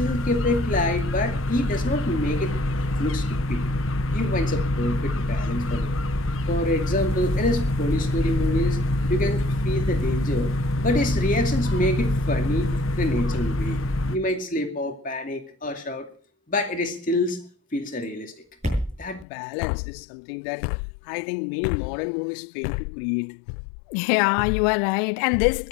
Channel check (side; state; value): right; drops out; at 19.2 s